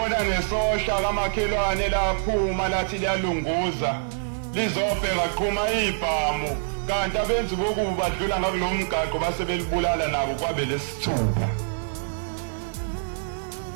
nesosha kamakhelwane laphuma lathi liyalunguza lizobheka qhuma ibhamu kanti abenzi bokuba badlula ngakulo mgaqo base belibulala nabo kwabe lesithupha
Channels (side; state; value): left; silent; digital silence